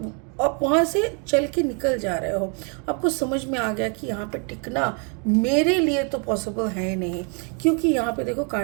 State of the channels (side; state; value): left; quieter; 37.9 dB